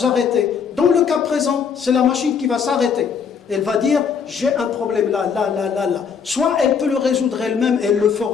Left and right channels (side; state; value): right; quieter; 6.5 dB